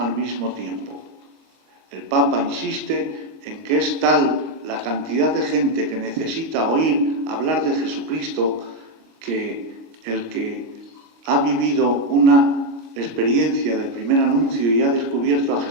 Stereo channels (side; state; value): left; late; 25 ms